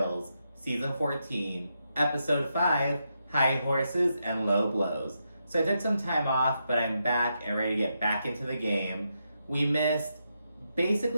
Season 14, Episode 5, High Horses and Low Blows. So I took some time off, but I'm back and ready to get back into the game. We missed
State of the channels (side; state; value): both; inverted; correlation -0.83